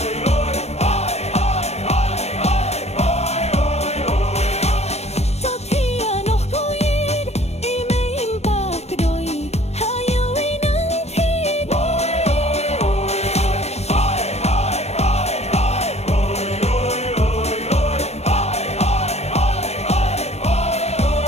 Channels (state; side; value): late; right; 0.31 ms